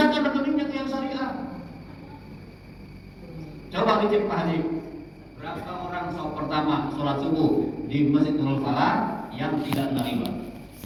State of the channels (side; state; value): both; identical; correlation 1.00